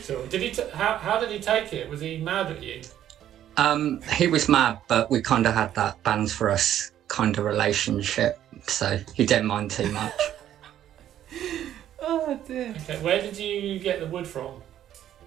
Did he? How did he take it? Was he mad at you? He was mad, but we kind of had that bands for us kind of relationship, so he didn't mind too much. Oh dear. Okay, where did you get the wood from?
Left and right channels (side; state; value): left; quieter; 11.3 dB